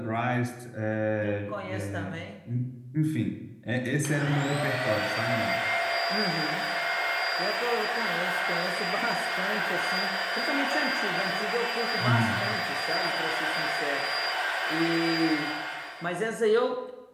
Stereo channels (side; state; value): both; identical; correlation 1.00